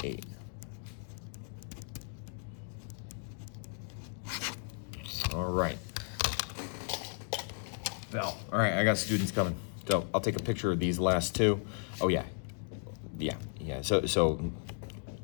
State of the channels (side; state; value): right; silent; 54 dB below the other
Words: All right. All right, I got students coming. So I'll take a picture of these last two. Oh yeah. So